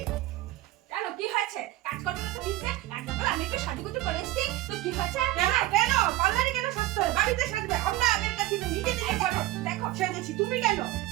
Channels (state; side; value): quieter; left; 16.4 dB